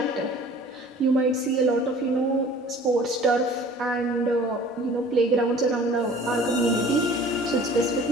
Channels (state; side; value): normal; both; correlation 0.48